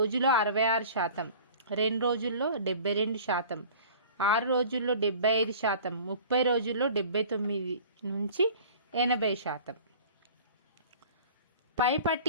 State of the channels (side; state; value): both; inverted; correlation -0.43